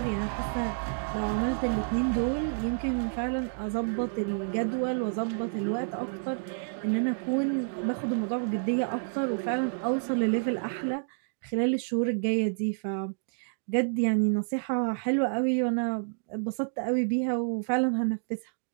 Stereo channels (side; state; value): left; silent; digital silence